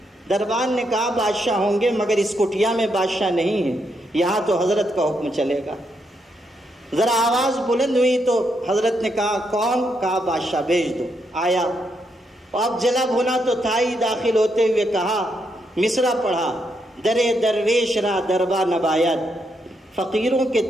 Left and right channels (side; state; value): both; normal; correlation 0.79